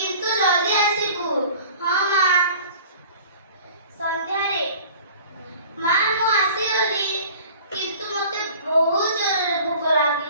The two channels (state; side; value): inverted; both; correlation -0.46